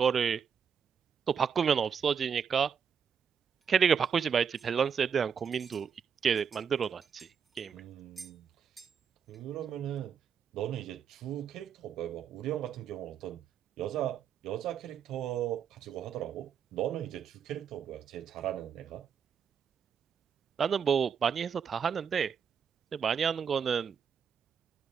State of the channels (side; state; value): left; quieter; 7.2 dB